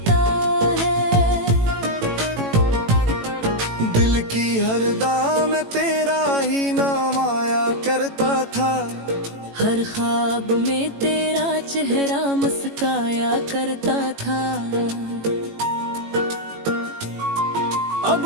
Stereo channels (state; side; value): late; left; 18 ms